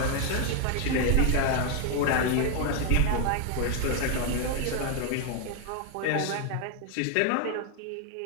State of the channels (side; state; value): both; different; correlation 0.01